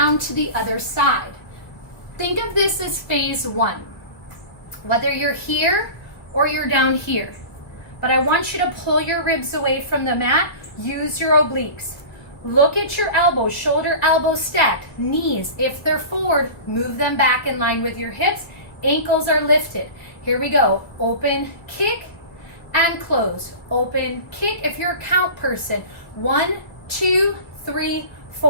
to the other side. Think of this as phase 1. Whether you're here or you're down here. But I want you to pull your ribs away from the mat. Use your obliques. Look at your elbows, shoulder, elbow stacked. Knees, if they're forward, move them back in line with your hips. Ankles are lifted. Here we go. Open, kick, and close. Open, kick. If you're a count person, 1, 2, 3,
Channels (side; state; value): right; late; 2.0 ms